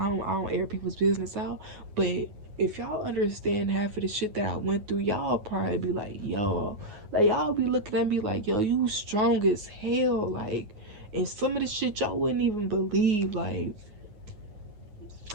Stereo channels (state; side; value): late; left; 9.4 ms